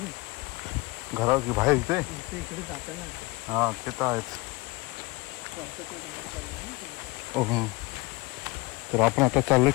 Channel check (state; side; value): quieter; right; 23.2 dB